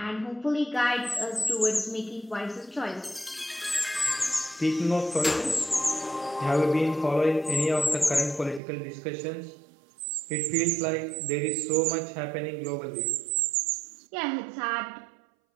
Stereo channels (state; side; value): drops out; left; at 8.6 s